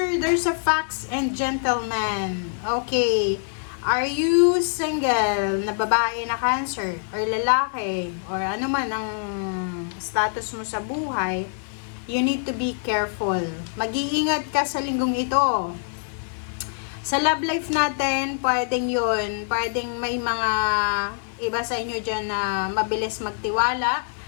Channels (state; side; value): silent; right; digital silence